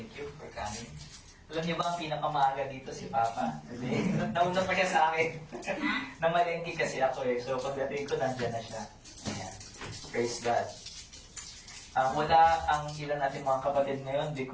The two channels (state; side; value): identical; both; correlation 1.00